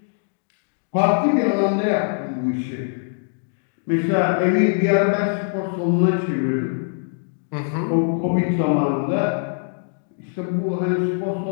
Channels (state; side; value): silent; right; digital silence